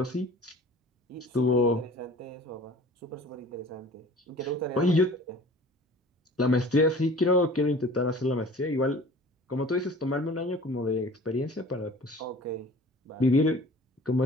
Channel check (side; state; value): both; normal; correlation 0.45